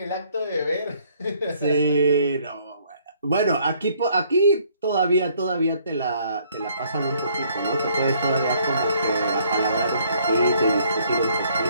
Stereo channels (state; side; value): inverted; both; correlation -0.63